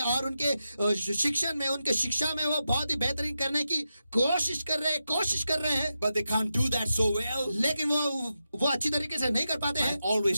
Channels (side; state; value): both; inverted; correlation -0.89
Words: और उनके शिक्षण में, उनके शिक्षा में वो बहुत ही बेहतरीन करने की कोशिश कर रहे हैं, But they can't do that so well. लेकिन वो अच्छी तरीके से नहीं कर पाते I हैं.